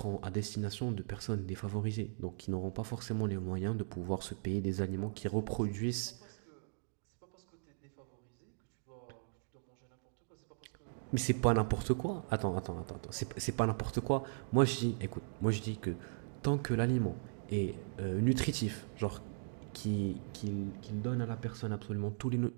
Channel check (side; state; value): left; silent; digital silence